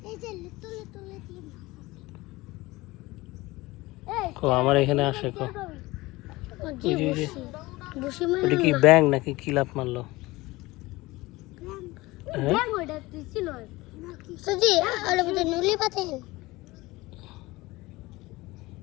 এই যে তুলে তুলে কি কো আমার এখানে আসে কো জি বসি এটা কি ব্যাং নাকি কি লাফ মারলো ব্যাং ওটা ছিল সুজি আর ওটা নুলি পাতা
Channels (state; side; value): quieter; right; 20.5 dB